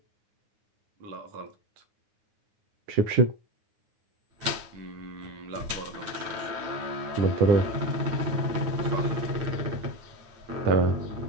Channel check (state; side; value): late; left; 9.5 ms